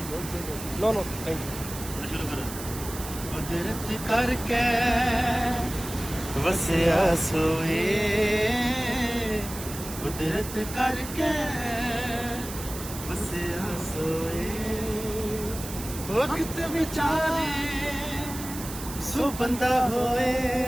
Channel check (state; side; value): noise; right; hiss, 11 dB below the sound